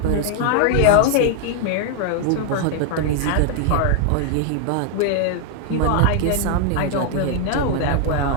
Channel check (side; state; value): both; different; correlation 0.00